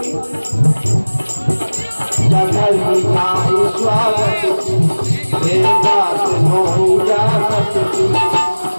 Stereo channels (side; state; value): both; inverted; correlation -1.00